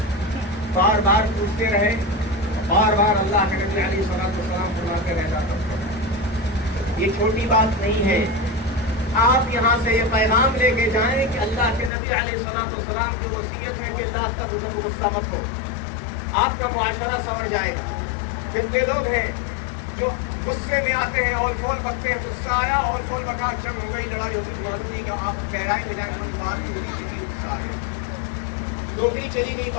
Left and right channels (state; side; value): drops out; right; at 11.9 s